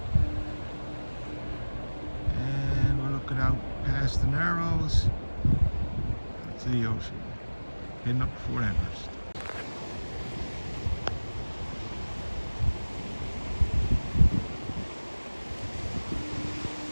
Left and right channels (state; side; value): inverted; both; correlation -1.00